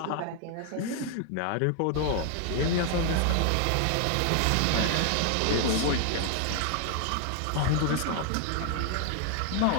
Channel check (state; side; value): different; both; correlation 0.00